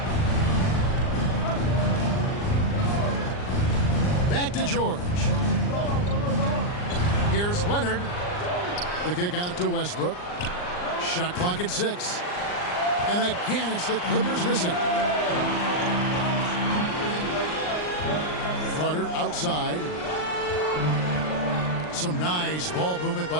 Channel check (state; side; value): late; right; 39 ms